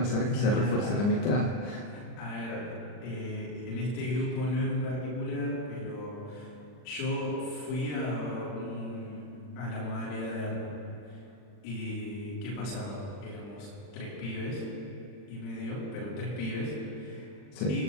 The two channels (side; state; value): right; late; 40 ms